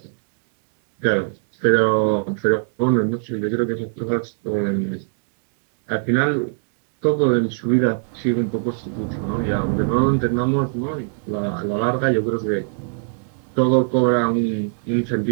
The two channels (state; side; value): silent; left; 65 dB below the other